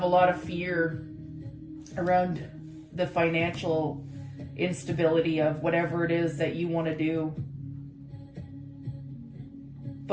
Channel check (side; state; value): both; identical; correlation 1.00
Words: a lot of fear around the financial instability of whatever it is that you want to do.